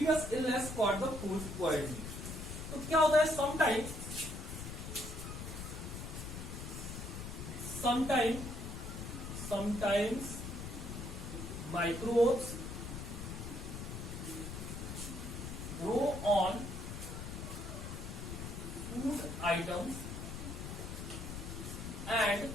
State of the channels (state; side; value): noise; left; rumble, 7 dB below the sound